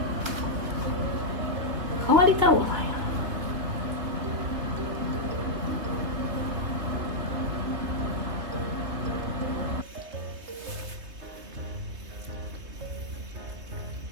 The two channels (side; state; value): left; late; 3.1 ms